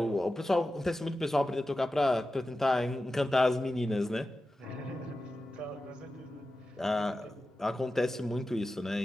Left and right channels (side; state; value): both; normal; correlation 0.93